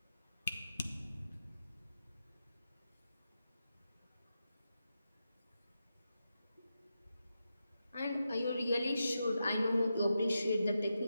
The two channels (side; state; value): both; inverted; correlation -0.88